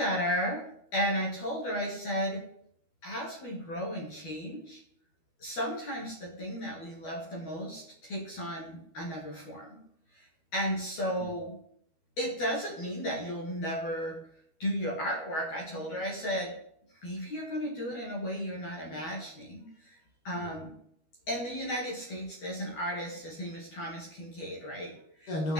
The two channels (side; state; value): right; late; 12 ms